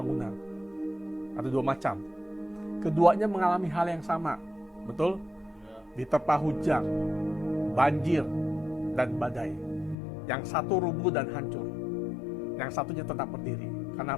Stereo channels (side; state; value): right; drops out; at 10.0 s